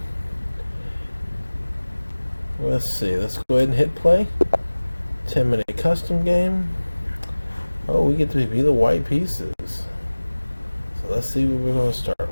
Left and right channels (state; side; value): inverted; both; correlation -1.00